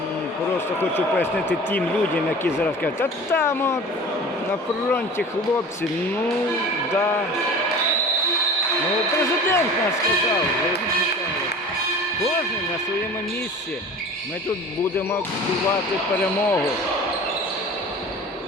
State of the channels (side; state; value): both; normal; correlation 0.40